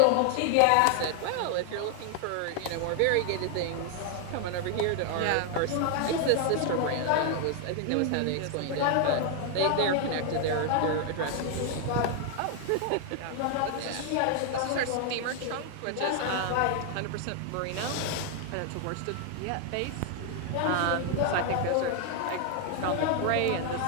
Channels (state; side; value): different; both; correlation 0.00